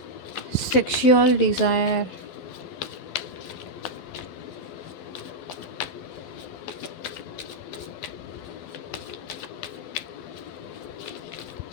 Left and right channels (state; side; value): late; right; 12 ms